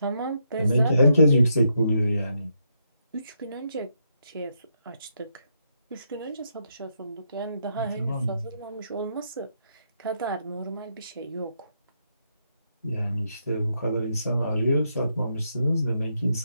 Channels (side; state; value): both; inverted; correlation -0.79